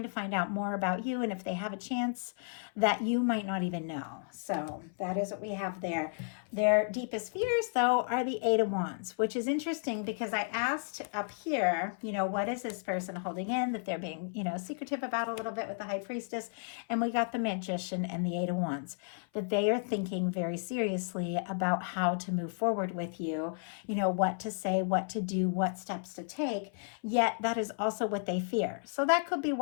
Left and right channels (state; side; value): silent; right; 56 dB below the other